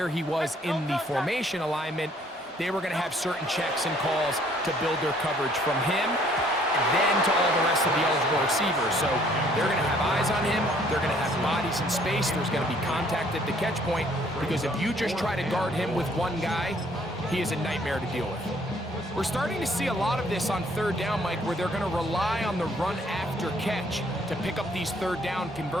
he was in the formation alignment, they were going to have certain checks and calls to build their coverage from him, and then to all the rest of the eligible receivers. So they're going to have eyes on him. They're going to have bodies in space. There's going to be contact at the catch point, because if you just try to guard him with one guy, he is a nightmare to deal with. We're starting to see a lot of this on third down, Mike, where they're going to rely on the run after catch to pick up these third down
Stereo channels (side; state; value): both; normal; correlation 0.62